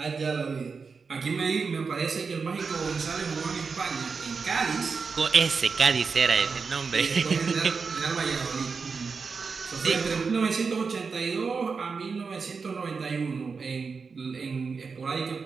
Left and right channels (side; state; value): left; quieter; 5.0 dB